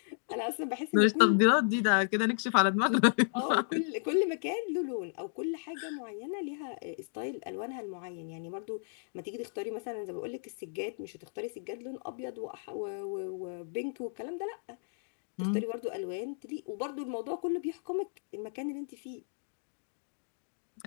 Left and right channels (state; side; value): silent; right; digital silence